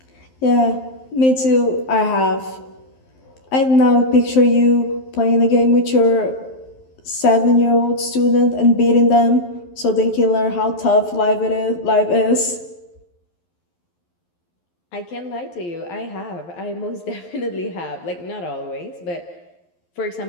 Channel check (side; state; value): right; late; 11 ms